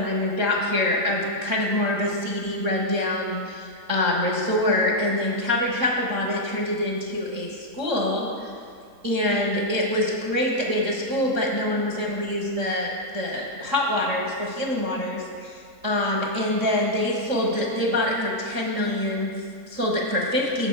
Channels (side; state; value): left; late; 3.7 ms